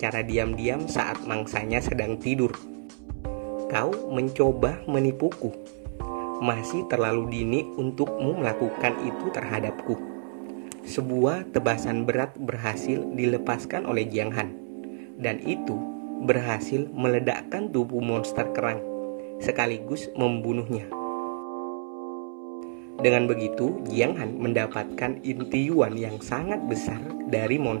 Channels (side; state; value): left; silent; 59 dB below the other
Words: diam-diam saat mangsanya sedang tidur. Kau mencoba menipuku. Masih terlalu dini untukmu melakukan itu terhadapku. Sebuah tebasan berat berhasil dilepaskan oleh Jiang Han, dan itu berhasil meledakkan tubuh monster kerang, sekaligus membunuhnya. Dengan begitu, Jiang Han mendapatkan intiuan yang sangat besar dari